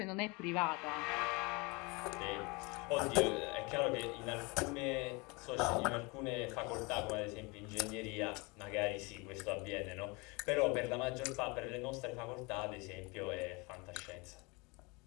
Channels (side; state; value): right; quieter; 27.5 dB